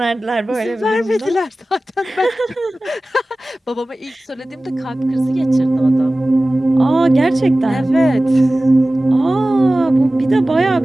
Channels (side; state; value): both; normal; correlation 0.97